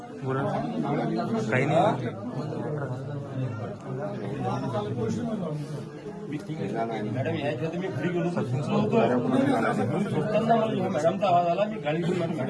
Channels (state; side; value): identical; both; correlation 1.00